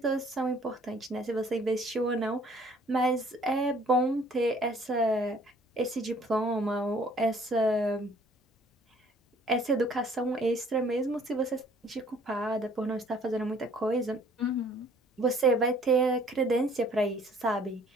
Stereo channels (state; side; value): normal; both; correlation 0.57